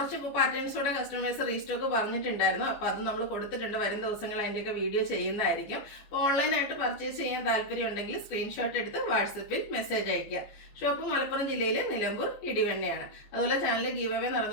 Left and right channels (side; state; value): right; late; 14 ms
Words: പാറ്റേൺസോടെ കസ്റ്റമേഴ്സ് റീസ്റ്റോക്ക് പറഞ്ഞിട്ടുണ്ടായിരുന്നു. അപ്പോൾ അത് നമ്മൾ കൊടുത്തിട്ടുണ്ട്. വരും ദിവസങ്ങൾ അതിൻ്റെയൊക്കെ വീഡിയോ ചെയ്യുന്നതായിരിക്കും. അപ്പോൾ ഓൺലൈനായിട്ട് പർച്ചേസ് ചെയ്യാൻ താല്പര്യം ഉണ്ടെങ്കിൽ സ്ക്രീൻഷോട്ട് എടുത്ത് വാട്സപ്പിൽ മെസ്സേജ് അയയ്ക്കുക. ഷോപ്പ് മലപ്പുറം ജില്ലയിൽ നിലമ്പൂർ ഇടിവണ്ണയാണ്. അതുപോലെ ചാനൽ ഗീവ് അവേ